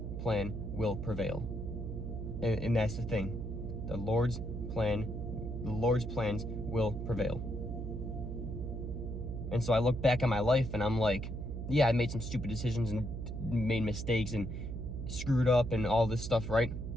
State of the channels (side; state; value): right; noise; hum, 5 dB below the sound